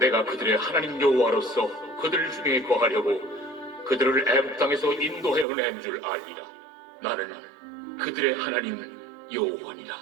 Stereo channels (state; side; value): drops out; left; at 5.5 s